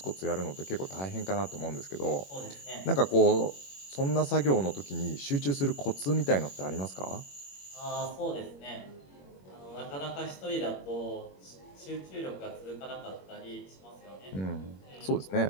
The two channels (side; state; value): right; late; 21 ms